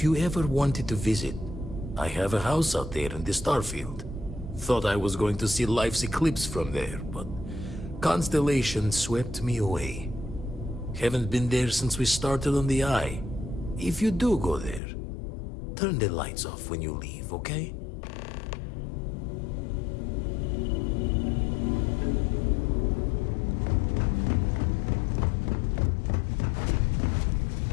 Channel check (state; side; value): drops out; right; at 14.8 s